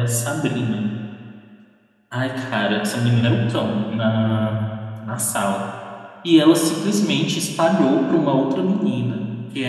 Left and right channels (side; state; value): both; identical; correlation 1.00